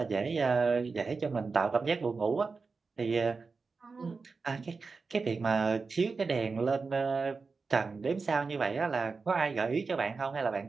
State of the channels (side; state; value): left; quieter; 4.5 dB